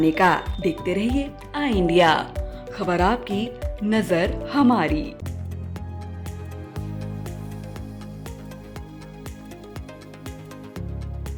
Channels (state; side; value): identical; both; correlation 1.00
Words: का। देखते रहिए आई इंडिया, खबर आपकी, नजर हमारी।